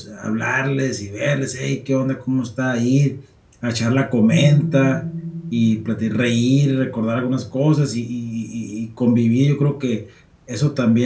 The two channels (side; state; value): both; identical; correlation 1.00